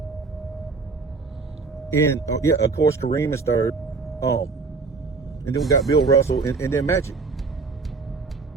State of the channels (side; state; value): left; quieter; 4.3 dB